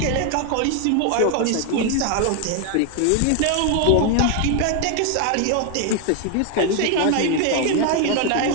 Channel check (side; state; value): both; different; correlation 0.01